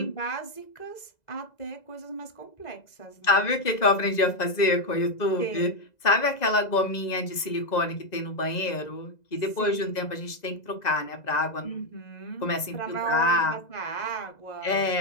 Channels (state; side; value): late; right; 2.0 ms